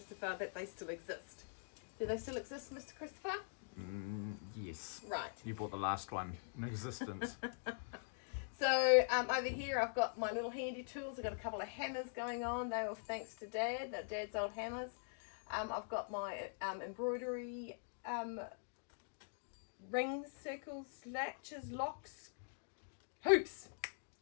that they still exist. Do they still exist, Mr. Christopher? Yes. Right. You bought the last one in existence. So over here I've got my little handy tools. I've got a couple of hammers going on. They were thanks to Dad, Dad's old hammers. I've got my embroidery rings, circles, latches, locks, hoops,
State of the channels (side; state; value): right; silent; digital silence